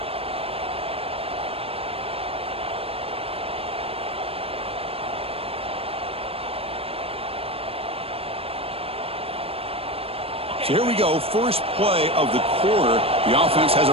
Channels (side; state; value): left; late; 0.28 ms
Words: So here we go, first play of the quarter. The offense has